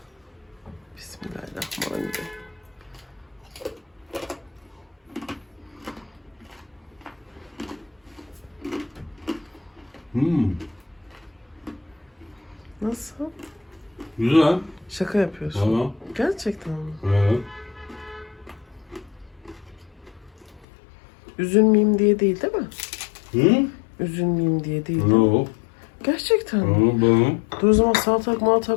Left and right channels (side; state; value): right; drops out; at 20.7 s